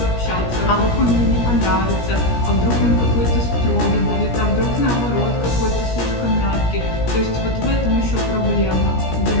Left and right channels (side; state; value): right; late; 17 ms